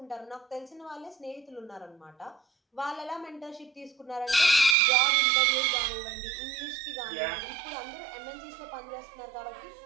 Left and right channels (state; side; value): drops out; left; at 4.8 s